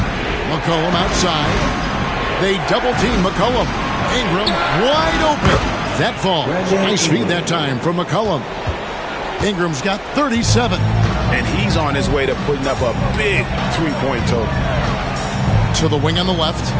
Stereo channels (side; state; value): both; identical; correlation 1.00